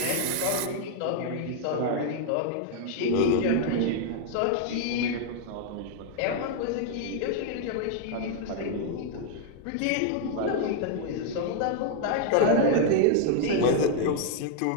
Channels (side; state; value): both; different; correlation 0.00